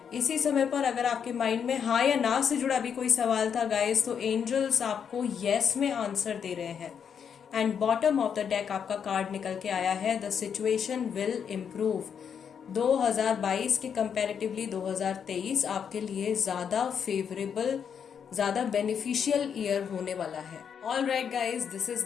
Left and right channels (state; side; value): quieter; right; 7.5 dB